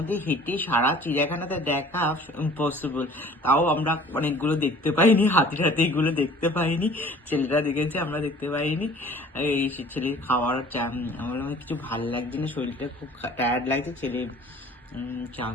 হেঁটে সারা চিড়িয়াখানাতে দেখা ইম্পসিবল। তাও আমরা অনেকগুলো দেখতে পাইনি, হাতির হাতে এগুলো দেখতে পাইনি। ছেলেরা দেখেছে, আমরা দেখতে পাইনি। এই ছেলের খাওয়ার আমার কিছু ভাল লাগছে না, শরীরটা খুব টায়ার্ড লাগছে। ছেলে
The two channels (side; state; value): both; normal; correlation 0.49